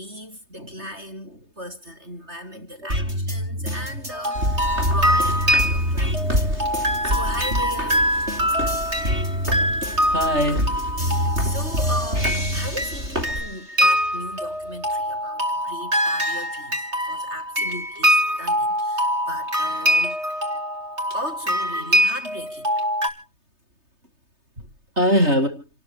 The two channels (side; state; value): left; late; 3.3 ms